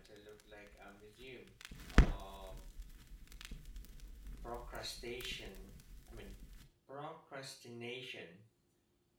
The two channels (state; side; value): identical; both; correlation 1.00